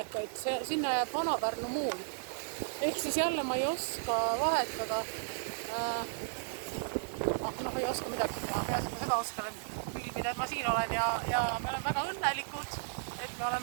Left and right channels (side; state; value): left; silent; digital silence